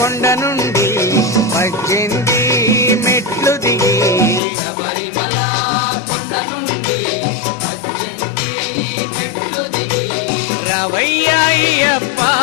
నుండి 18 మెట్లు దిగి శబరిమల కొండ నుండి 18 మెట్లు దిగి రవయ్య అయ్యప్ప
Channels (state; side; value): drops out; right; at 4.4 s